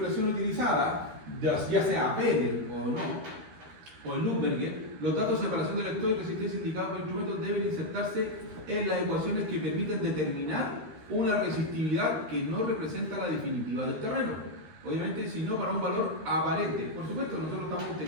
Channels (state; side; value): late; left; 13 ms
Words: utilizada, ya sea Penel o no, o el Lumberger, los datos de separación de electrodo y resistencia indicados por instrumentos deben insertarse en las ecuaciones que permiten determinar una resistividad que no representa la definitiva del terreno. Obviamente, sino para un valor aparente. Por supuesto, nosotros estamos